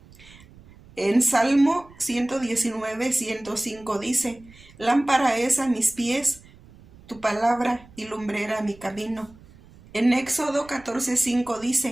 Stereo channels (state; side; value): noise; right; rumble, 23 dB below the sound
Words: En Salmo 119:105 dice: lámpara es a mis pies tu palabra y lumbrera a mi camino. En Éxodo 14:5